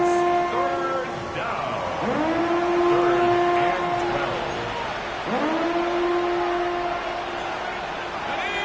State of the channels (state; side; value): identical; both; correlation 1.00